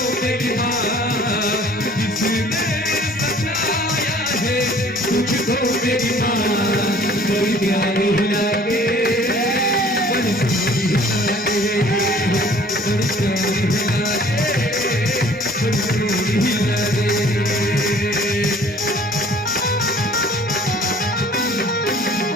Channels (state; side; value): normal; both; correlation 0.52